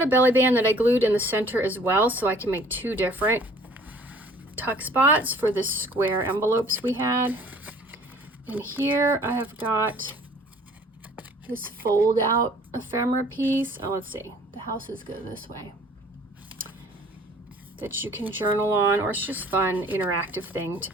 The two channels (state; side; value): normal; both; correlation 0.53